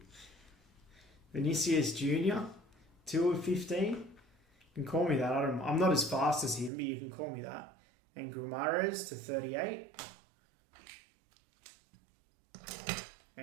Vinicius Jr. 2 of 15? You can call me that. I'm not as fast as him, but you can call me that. And Gumares to 38.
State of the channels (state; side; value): drops out; left; at 6.7 s